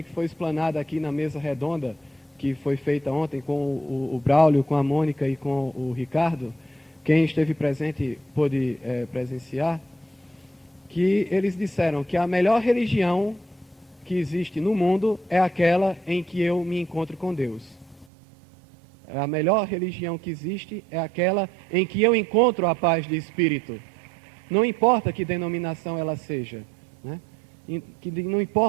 que foi explanada aqui na mesa redonda, que foi feita ontem com o Braulio, com a Mônica e com o Ricardo. Quem esteve presente pôde presenciar, que eles disseram que a melhor religião que existe no mundo é aquela em que eu me encontro com Deus. A melhor religião que existe é aquela em que eu encontro a paz de espírito. Não importa que denominação ela seja, né? Não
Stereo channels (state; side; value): drops out; left; at 18.1 s